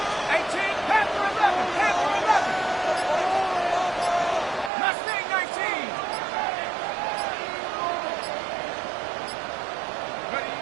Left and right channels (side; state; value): left; drops out; at 4.7 s